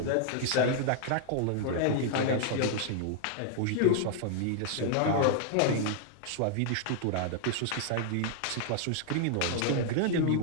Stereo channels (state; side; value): different; both; correlation 0.00